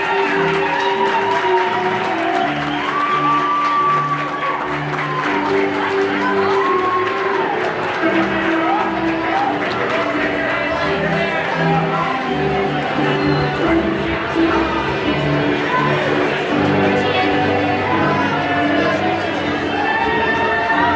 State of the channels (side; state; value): both; identical; correlation 1.00